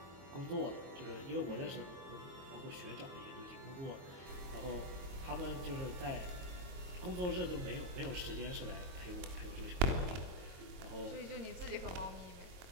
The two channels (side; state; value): left; late; 23 ms